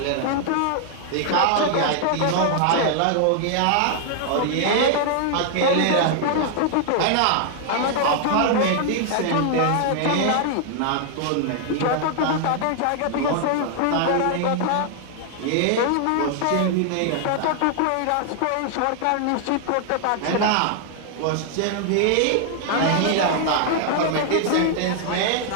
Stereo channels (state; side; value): different; both; correlation 0.00